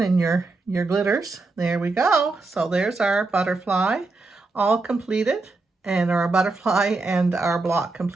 in your glitters. There we go. So there's our butterfly all completed, and our butterfly and our block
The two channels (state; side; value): quieter; left; 3.5 dB